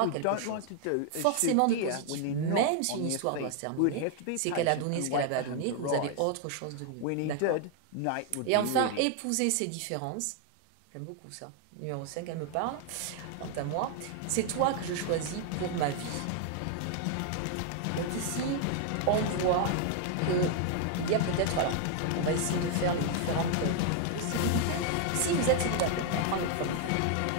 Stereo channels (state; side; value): different; both; correlation 0.00